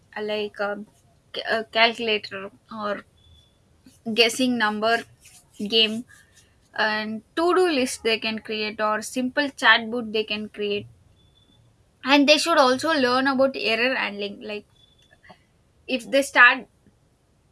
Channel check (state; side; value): identical; both; correlation 1.00